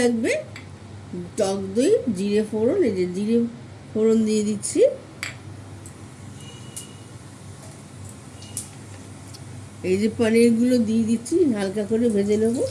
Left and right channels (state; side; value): identical; both; correlation 1.00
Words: টক দই, জিরে ফোড়ন, এই যে জিরে ফোড়ন দিয়ে দিচ্ছি। এই যে পনিরগুলো দিয়ে দিচ্ছি, হালকা করে ভেজে নেব।